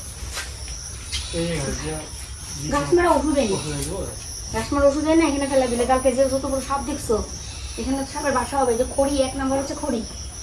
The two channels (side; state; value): both; identical; correlation 1.00